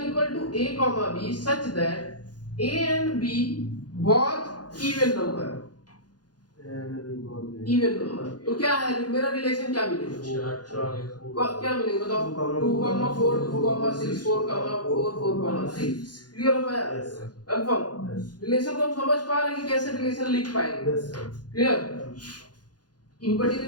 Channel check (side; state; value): right; late; 0.69 ms